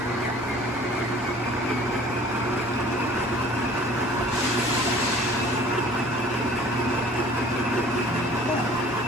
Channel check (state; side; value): normal; both; correlation 0.49